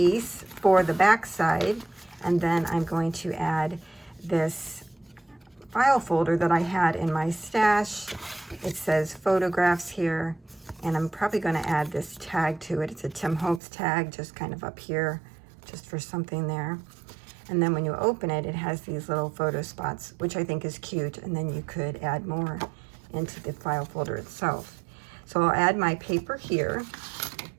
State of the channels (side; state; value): left; drops out; at 13.6 s